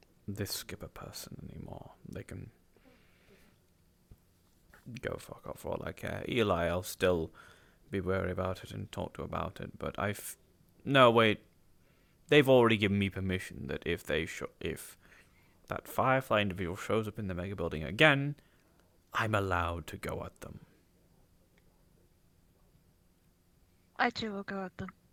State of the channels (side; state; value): both; identical; correlation 1.00